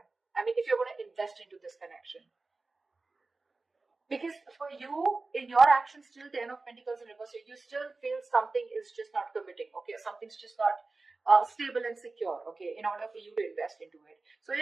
I mean, if you're going to invest into this connection. Because for you, in your actions, still 10 of Pentacles in reverse, you still feel something is just not committing, okay? Something's just not stable and secure, okay, in order for you to invest into it. So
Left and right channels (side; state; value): left; quieter; 3.6 dB